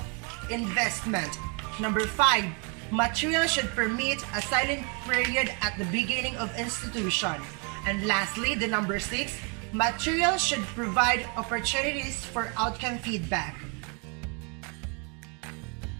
Number 5, materials should permit a silent period at the beginning of institution. And lastly, the number 6, materials should provide opportunities for outcome feedback.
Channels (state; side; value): quieter; left; 34.8 dB